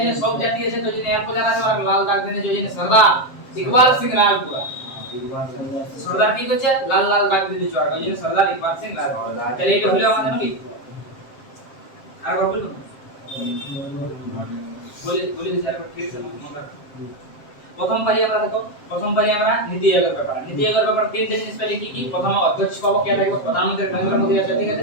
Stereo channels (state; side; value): late; right; 7.5 ms